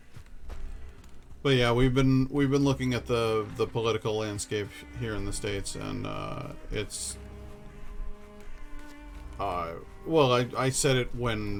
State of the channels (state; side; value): identical; both; correlation 1.00